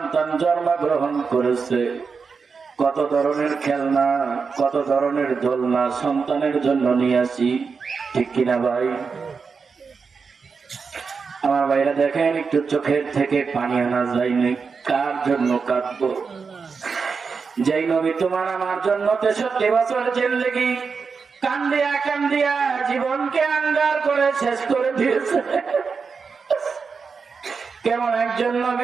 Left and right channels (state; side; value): quieter; left; 5.2 dB